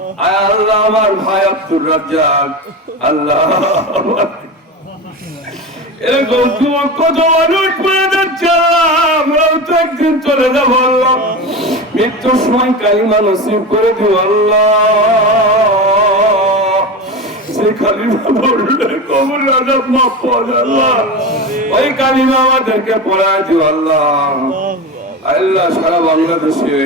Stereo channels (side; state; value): both; normal; correlation 0.24